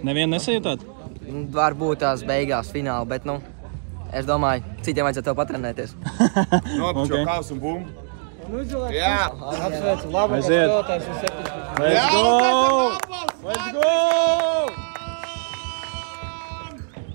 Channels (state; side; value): silent; left; digital silence